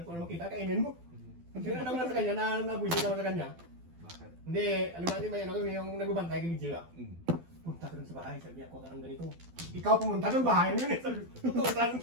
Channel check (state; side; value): late; left; 12 ms